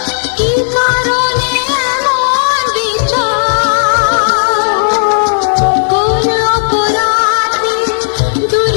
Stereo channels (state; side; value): silent; right; 70 dB below the other